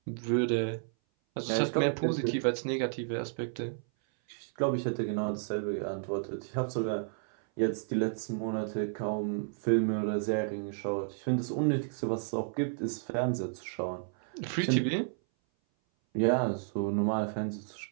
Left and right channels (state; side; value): silent; left; 56 dB below the other